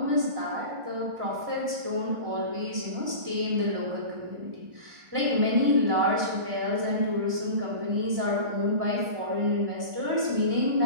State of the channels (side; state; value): left; late; 1.4 ms